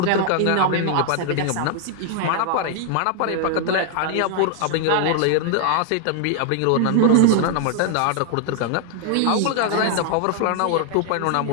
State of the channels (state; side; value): different; both; correlation 0.00